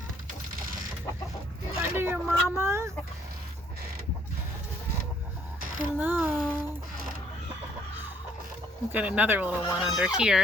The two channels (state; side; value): normal; both; correlation 0.65